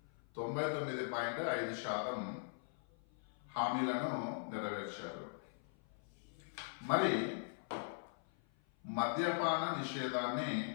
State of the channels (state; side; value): silent; right; 50 dB below the other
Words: 99.5% హామీలను నెరవేర్చారు. మరి మద్యపాన నిషేధాన్ని